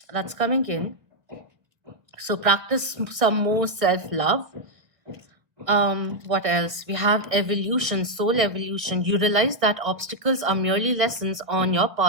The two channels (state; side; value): late; left; 1.7 ms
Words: That's coming in. So practice some more self-love. What else? We have evolution, soul evolution. You realize that obstacles are merely lessons on your